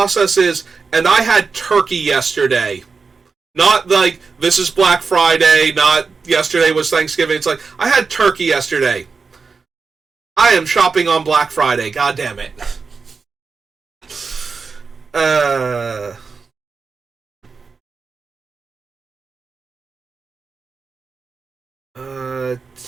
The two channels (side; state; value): left; quieter; 4.9 dB